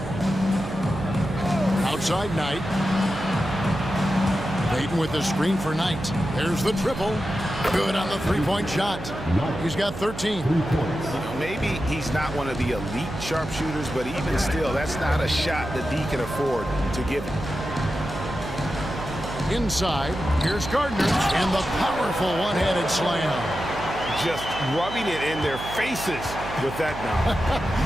Outside Knight. Payton with the screen for Knight. There's the triple. Good on the three-point shot. He's got 13. 3 points. Maybe he's not one of the elite sharpshooters, but even still, that's not a shot that D can afford to give him. Inside, here's Gardner, and the powerful one-handed slam. Just rubbing it in their faces with that now.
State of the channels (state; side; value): noise; right; hum, 10 dB below the sound